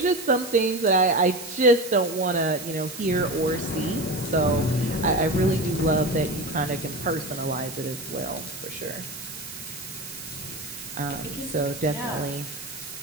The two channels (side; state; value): right; noise; hiss, 11 dB below the sound